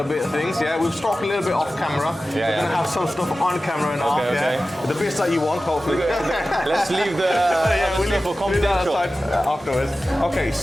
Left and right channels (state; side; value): normal; both; correlation 0.95